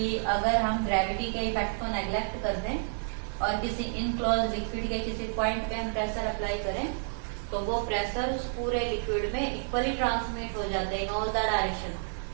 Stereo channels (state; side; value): silent; left; digital silence